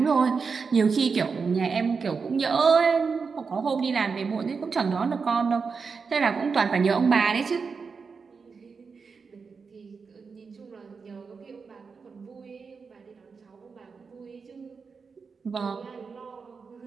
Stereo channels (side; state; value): left; quieter; 5.2 dB